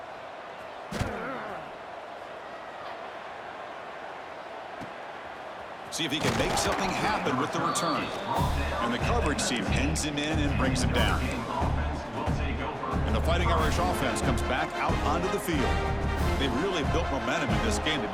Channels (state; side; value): identical; both; correlation 1.00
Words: See if he can make something happen with the return. And the coverage team pins him in and brings him down. And the Fighting Irish offense comes back out onto the field. They've really built momentum in this game. They've